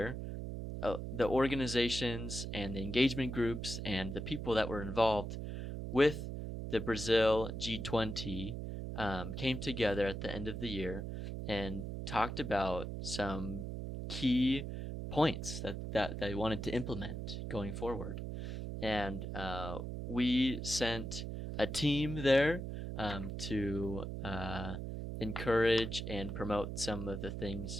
the organizations and the engagement groups and the people that were involved with the Brazil G20 came together at the end of the year and talked about some key points that they wanted to implement going forward. And we sent a team there to encourage and promote some of the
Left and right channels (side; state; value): right; noise; hum, 5 dB below the sound